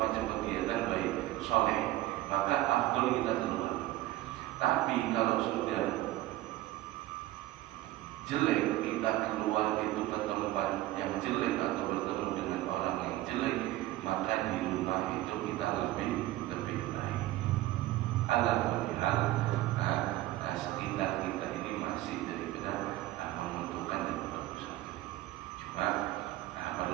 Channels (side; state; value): left; quieter; 16.2 dB